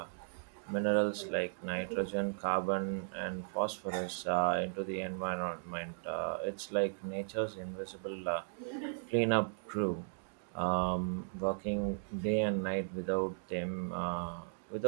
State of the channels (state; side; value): silent; left; digital silence